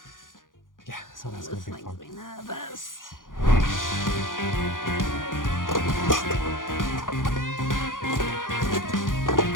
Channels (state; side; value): late; right; 0.89 ms